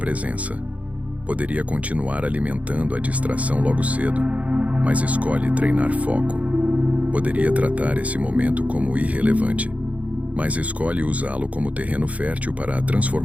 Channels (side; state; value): left; late; 0.068 ms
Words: Poderia continuar alimentando a distração logo cedo, mas escolhe treinar foco. Poderia tratar esse momento como irrelevante, mas escolhe usá-lo como terreno fértil para a